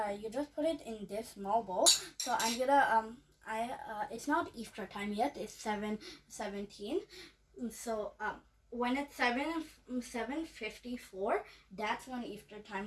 put it in this small bowl. So I'm gonna it's not iftar time yet. It's 7:17. So when it's 7:54, that's when iftar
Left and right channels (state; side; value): identical; both; correlation 1.00